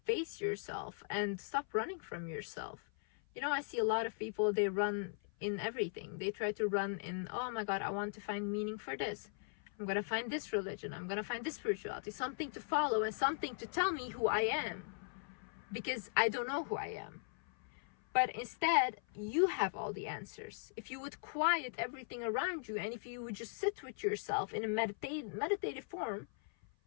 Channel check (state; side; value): silent; right; 52 dB below the other